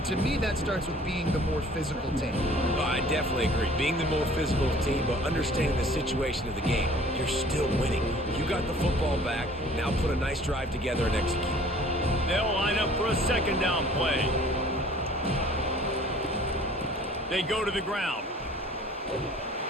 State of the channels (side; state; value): both; normal; correlation 0.51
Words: to me, that starts with being the more physical team. Oh, I definitely agree. Being the more physical team, but understanding the situation of the game. You're still winning. You got the football back. Now put a nice drive together and execute. They'll line up for a 2nd down play. They go to the ground.